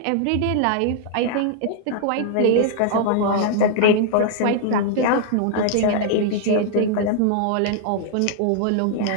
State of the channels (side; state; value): both; different; correlation 0.00